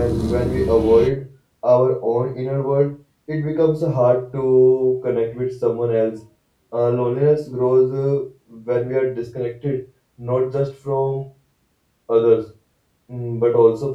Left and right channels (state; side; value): identical; both; correlation 1.00